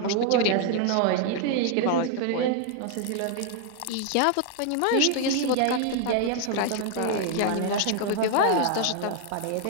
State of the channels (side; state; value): both; different; correlation 0.00